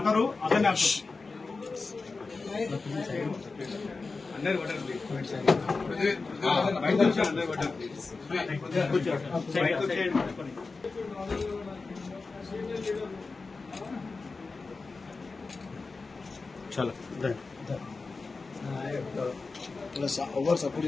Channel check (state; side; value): quieter; right; 4.0 dB